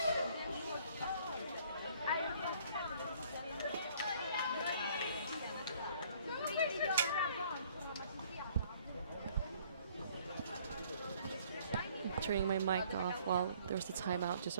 Turning my mic off while there's the timeout, just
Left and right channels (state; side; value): inverted; both; correlation -0.59